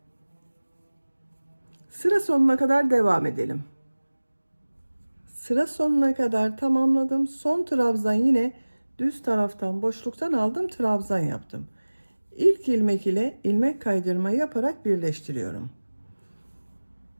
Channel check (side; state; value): both; inverted; correlation -1.00